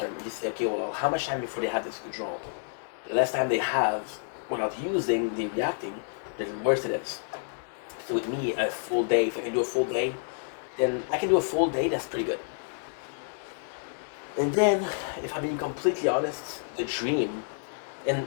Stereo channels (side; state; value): right; silent; digital silence